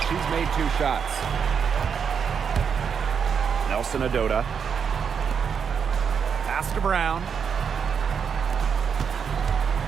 she's made 2 shots. Nelson Adota. Pass to Brown.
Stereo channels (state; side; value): quieter; left; 6.8 dB